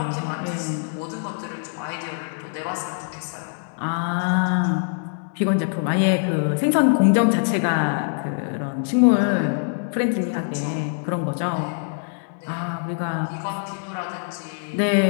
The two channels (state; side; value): silent; right; 63 dB below the other